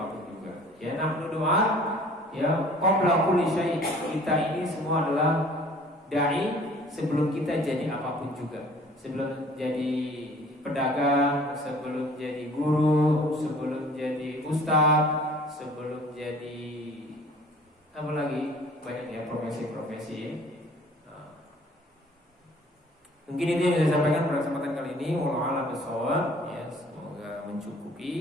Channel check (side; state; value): both; normal; correlation 0.51